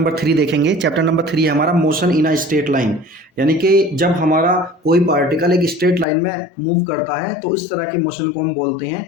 3 देखेंगे। चैप्टर नंबर 3 है हमारा motion in a straight line, यानी कि जब हमारा कोई पार्टिकल एक स्ट्रेट लाइन में मूव करता है तो इस तरह के मोशन को हम बोलते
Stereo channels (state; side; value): drops out; right; at 6.1 s